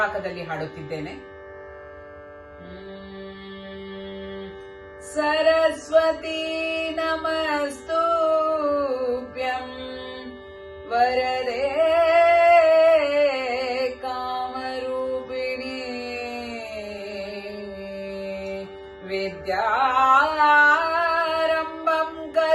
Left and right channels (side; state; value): both; identical; correlation 1.00